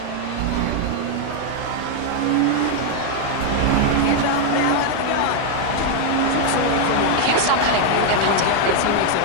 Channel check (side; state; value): both; different; correlation 0.00